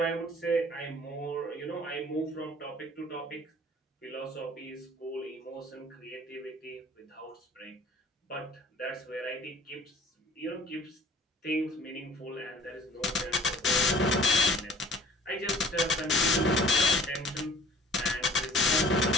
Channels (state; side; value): normal; both; correlation 0.49